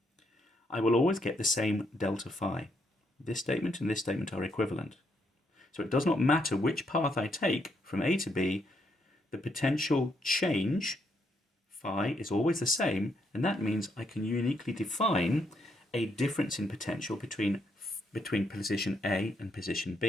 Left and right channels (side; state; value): both; normal; correlation 0.76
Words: I will always get the same delta phi. This statement and this statement are equivalent. So it does not matter which path I take from A to B, the potential change, phi, is always the same, and that means I can uniquely define a difference in potential between position A and position